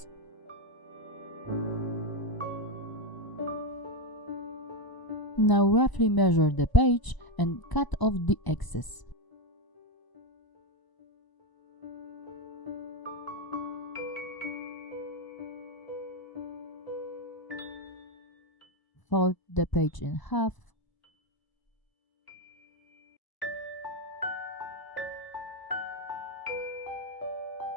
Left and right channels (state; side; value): late; right; 1.0 ms